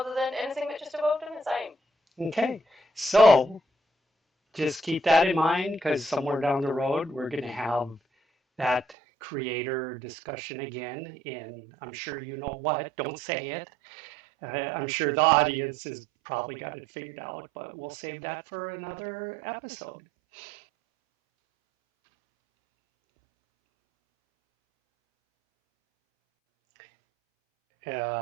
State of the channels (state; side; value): drops out; left; at 9.0 s